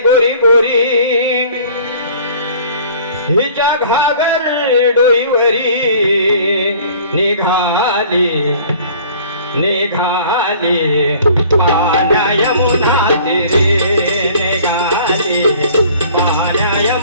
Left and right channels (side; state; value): both; inverted; correlation -0.50